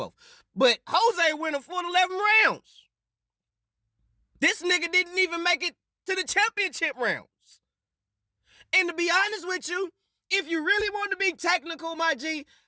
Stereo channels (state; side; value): identical; both; correlation 1.00